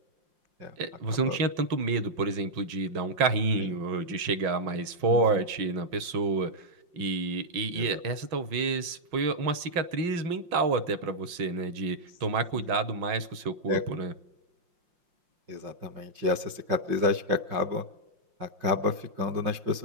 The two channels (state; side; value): late; left; 5.6 ms